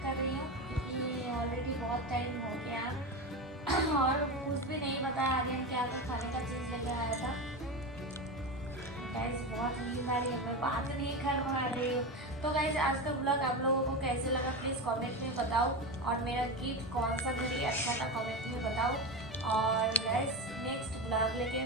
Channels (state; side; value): normal; both; correlation 0.20